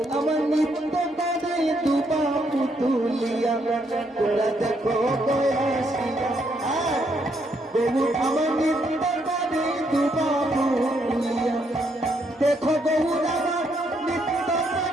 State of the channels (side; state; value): both; normal; correlation 0.74